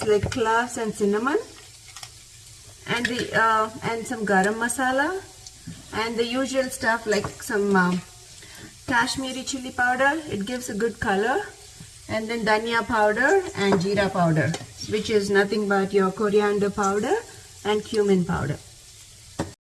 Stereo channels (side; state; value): both; identical; correlation 1.00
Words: like cloves and cinnamon, and some garam masala, and the usual stuff like some Kashmiri chili powder. It gives a good color, and then dhania powder and jeera powder, which is nothing but your coriander powder and cumin powder.